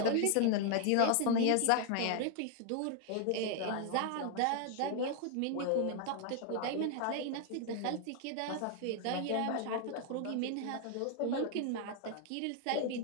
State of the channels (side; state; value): both; different; correlation 0.00